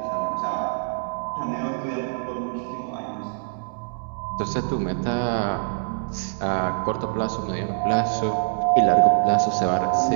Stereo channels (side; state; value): left; silent; 62 dB below the other